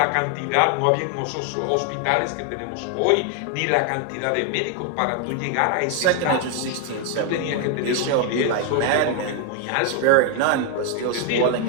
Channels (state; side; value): different; both; correlation 0.01